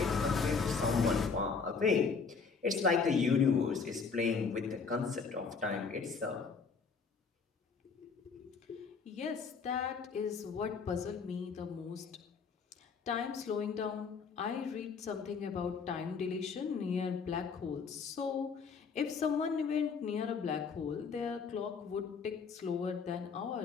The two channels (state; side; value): quieter; right; 5.3 dB